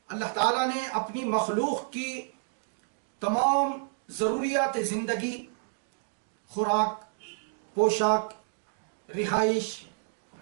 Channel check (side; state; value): left; silent; digital silence